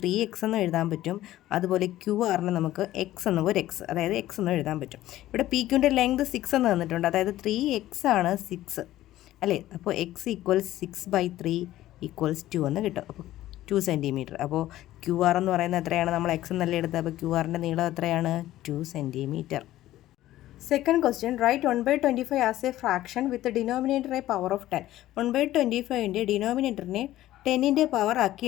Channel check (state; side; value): quieter; right; 14.7 dB